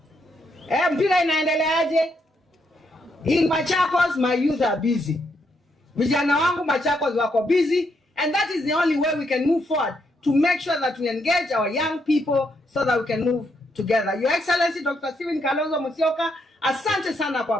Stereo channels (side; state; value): both; normal; correlation 0.77